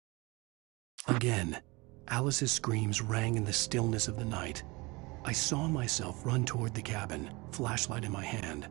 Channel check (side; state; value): left; quieter; 24.8 dB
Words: Again, Alice's screams rang in the stillness of the night. I saw myself run toward the cabin, flashlight in my hand.